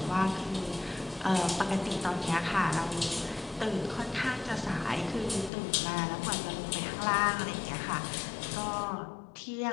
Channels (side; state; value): right; drops out; at 5.5 s